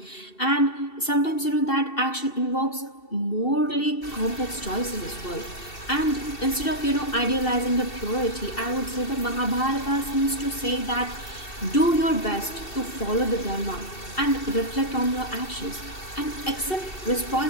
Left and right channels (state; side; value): late; right; 2.7 ms